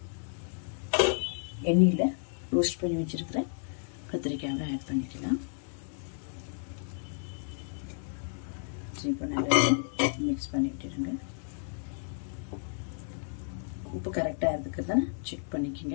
எண்ணெயில் ரோஸ்ட் பண்ணி வச்சுருக்கிறேன் கத்திரிக்காயை ஆட் பண்ணிக்கலாம். இப்போ நல்லா மிக்ஸ் பண்ணிட்டுருங்க. உப்பு கரெக்டாக இருக்குது தானே செக்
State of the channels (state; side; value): silent; right; digital silence